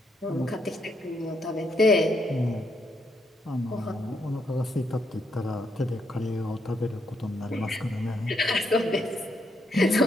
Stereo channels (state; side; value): normal; both; correlation 0.77